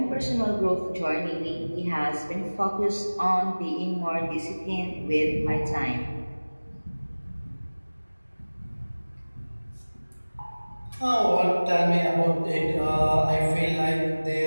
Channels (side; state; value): both; inverted; correlation -1.00